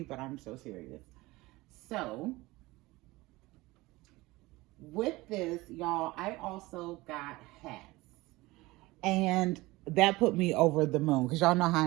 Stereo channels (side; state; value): left; quieter; 20.5 dB